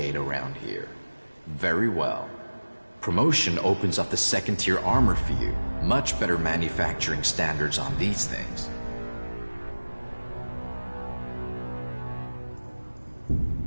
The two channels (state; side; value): inverted; both; correlation -1.00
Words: around here. Very well. Promotion opens up the second-tier armor for you. Much better manufacturing standards on these things.